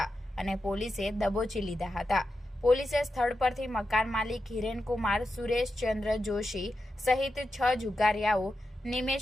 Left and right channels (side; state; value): both; normal; correlation 0.89